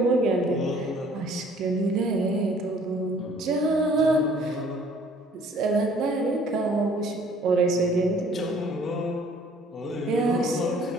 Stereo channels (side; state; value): both; normal; correlation 0.56